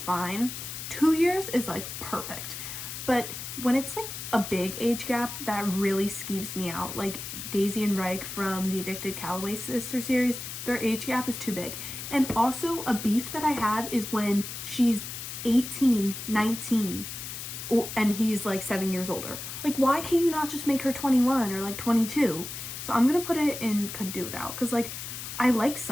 fine. 2 years is like perfect. But when it's like a big age gap, that really skeeves me out. Like Daisy and Reich from the Addicted Calloway Sister series, their age gap is too big. And also a beef that I have is when she's 18, 19, and he's like 7 years older. Like, why can't you not just make her 21 or like 22? So I'm gonna put it in could do without, because like I like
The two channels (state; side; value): noise; left; hiss, 8 dB below the sound